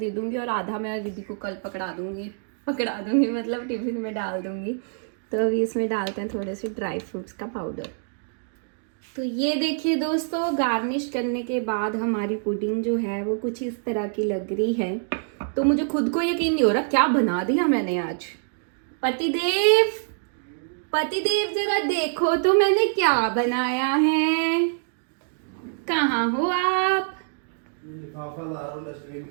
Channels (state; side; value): silent; left; digital silence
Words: दूँगी और आधा मैं रिद्धि को कल पकड़ा दूँगी मतलब टिफ़िन में डाल दूँगी। तो अभी इसमें डालते हैं थोड़े से ड्राई फ्रूट्स का पाउडर। तो ये देखिए दोस्तों, गार्निश करने के बाद हमारी पुडिंग जो है वो कुछ इस तरह की लग रही है। तो मुझे खुद को यकीन नहीं हो रहा क्या बना दिया मैंने आज। पतिदेव, पतिदेव जरा देखो तो मैंने क्या बनाया है। कहाँ हो आप? लिफाफा ला रहा हूँ डस्टबिन